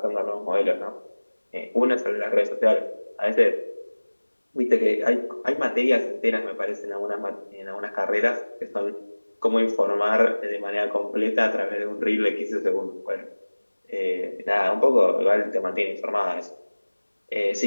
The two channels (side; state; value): both; inverted; correlation -1.00